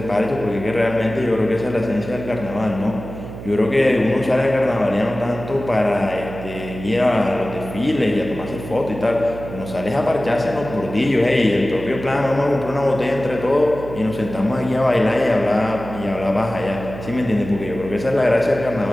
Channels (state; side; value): noise; right; hum, 11 dB below the sound